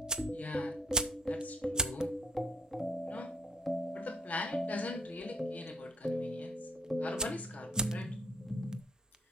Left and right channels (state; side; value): normal; both; correlation 0.66